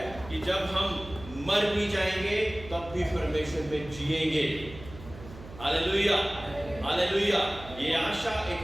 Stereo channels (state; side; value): noise; right; hum, 16 dB below the sound